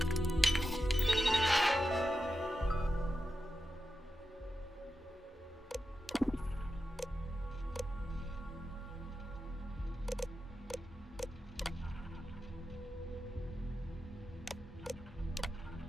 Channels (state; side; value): normal; both; correlation 0.90